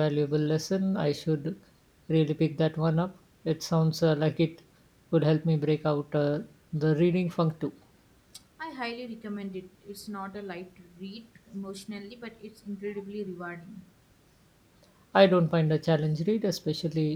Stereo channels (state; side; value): identical; both; correlation 1.00